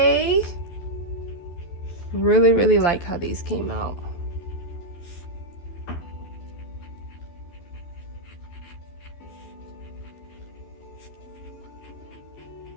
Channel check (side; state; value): right; late; 12 ms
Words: Really like how these came out.